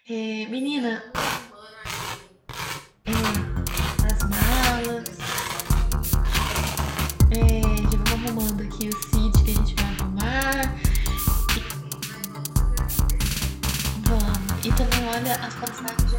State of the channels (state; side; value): identical; both; correlation 1.00